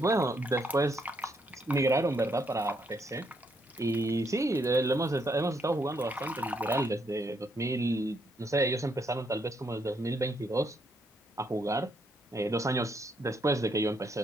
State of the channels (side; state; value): both; normal; correlation 0.75